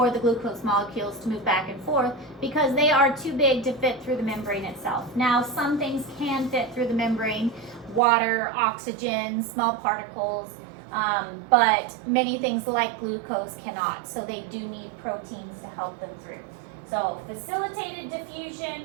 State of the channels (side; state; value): left; drops out; at 8.0 s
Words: the glucose molecules to move back and forth because they are too big to fit through the membrane itself. Now, some things can fit through the membrane, water, oxygen, small particles, but many things like glucose cannot, so they do need proteins to help them through. So facilitated